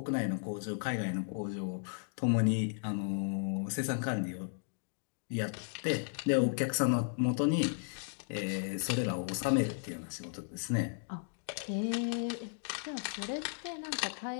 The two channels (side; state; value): right; silent; digital silence